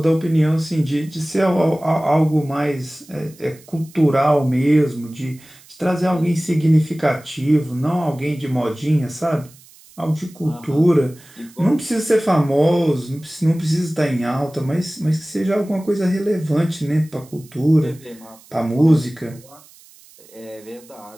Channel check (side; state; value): right; noise; hiss, 25 dB below the sound